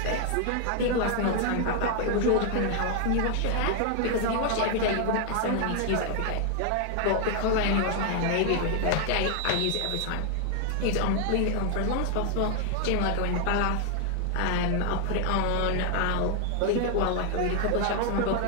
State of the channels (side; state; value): both; different; correlation 0.00